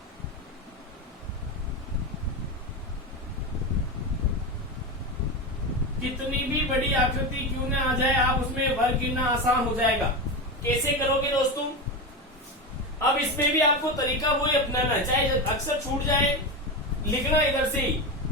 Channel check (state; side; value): normal; both; correlation 0.18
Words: कितनी भी बड़ी आकृति क्यों ना आ जाए, आप उसमें वर्ग गिनना आसान हो जाएगा। कैसे करोगे दोस्तों? अब इसमें भी आपको तरीका वही अपनाना है, चाहे अक्सर छूट जाए, लिखना इधर से ही